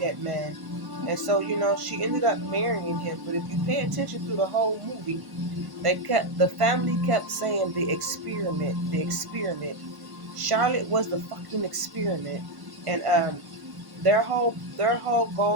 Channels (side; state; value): left; late; 1.1 ms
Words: that man, and so she ended up marrying him. But if you pay attention through the whole movie, the family kept saying the experiment. Charlotte was the fucking experiment, and their whole